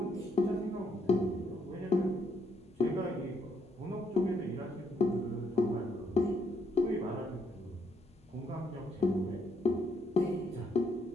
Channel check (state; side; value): normal; both; correlation 0.72